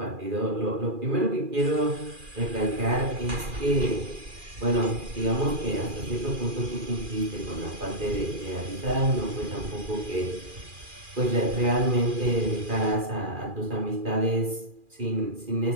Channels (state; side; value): late; left; 2.4 ms